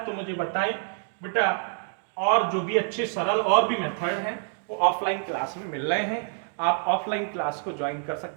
तो मुझे बताएं बेटा। और जो भी अच्छे सरल और भी मेथड हैं वो ऑफलाइन क्लास में मिल रहे हैं, आप ऑफलाइन क्लास को ज्वाइन कर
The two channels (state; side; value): silent; left; 60 dB below the other